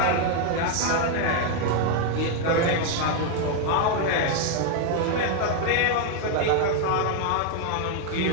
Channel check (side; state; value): both; different; correlation 0.00